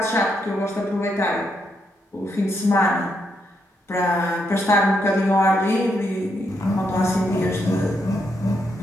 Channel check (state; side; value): normal; both; correlation 0.79